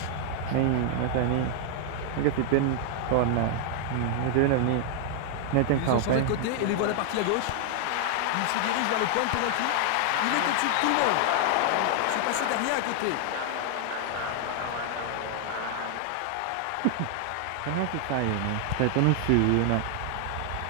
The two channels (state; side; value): different; both; correlation 0.00